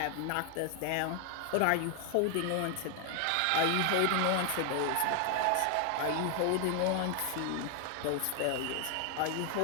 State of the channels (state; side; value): different; both; correlation 0.00